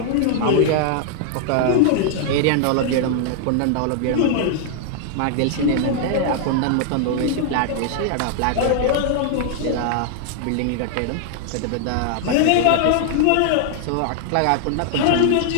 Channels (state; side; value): different; both; correlation 0.00